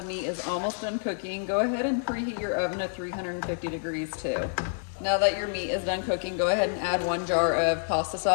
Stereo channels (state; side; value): silent; right; digital silence